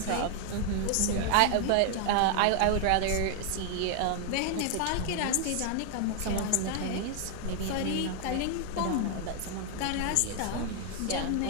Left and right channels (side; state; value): both; different; correlation 0.00